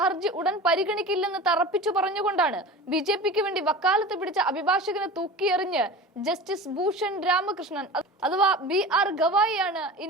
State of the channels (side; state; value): both; normal; correlation 0.34